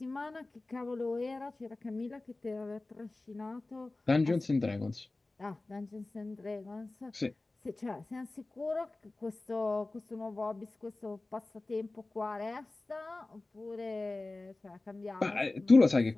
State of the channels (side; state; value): right; quieter; 3.1 dB